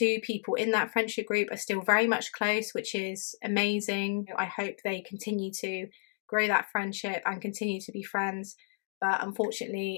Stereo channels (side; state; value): right; silent; digital silence